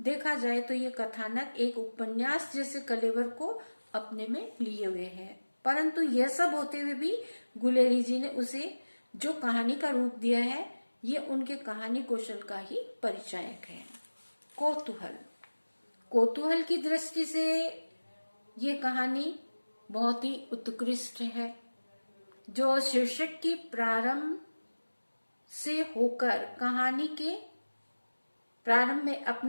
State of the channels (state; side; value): inverted; both; correlation -1.00